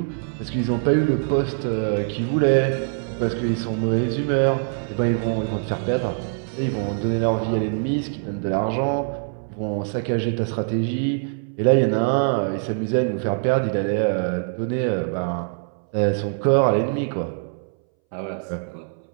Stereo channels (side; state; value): left; silent; 62 dB below the other